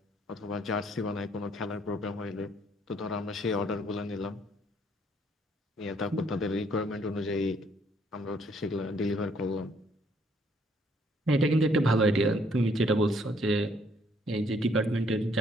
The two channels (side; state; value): both; normal; correlation 0.66